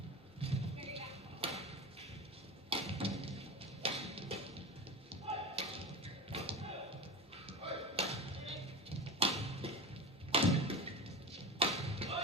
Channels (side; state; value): both; normal; correlation 0.29